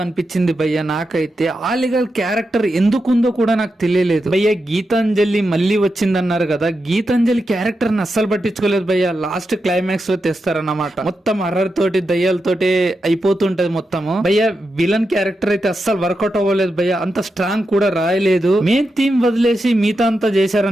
అనిపించింది భయ్య నాకైతే. ఆలిగల్ క్యారెక్టర్ ఎందుకుందో కూడా నాకు తెలియలేదు భయ్య. గీతాంజలి మళ్ళీ వచ్చిందన్నారు కదా, గీతాంజలి క్యారెక్టర్ ని అస్సలు పట్టించుకోలేదు భయ్య. లాస్ట్ క్లైమాక్స్ లో తెస్తారన్నమాట. మొత్తం హర్రర్ తోటి దయ్యాలతోటి అయిపోతుంటది మొత్తము భయ్య. విలన్ క్యారెక్టర్ అయితే అస్సలు వర్కౌట్ అవ్వలేదు భయ్య. అంత స్ట్రాంగ్ కూడా రాయలేదు. మెయిన్ థీమ్ వదిలేసి మిగతా అంతా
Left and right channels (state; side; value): normal; both; correlation 0.88